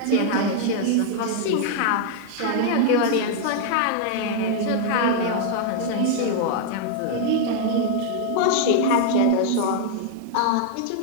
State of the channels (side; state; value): both; different; correlation 0.00